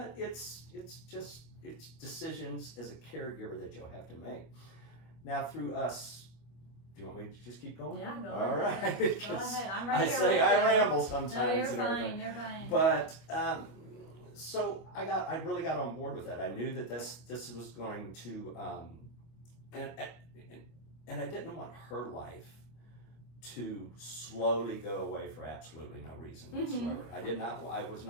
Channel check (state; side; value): late; right; 25 ms